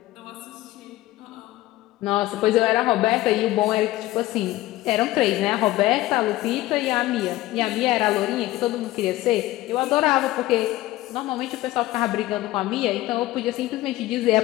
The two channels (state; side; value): quieter; right; 16.9 dB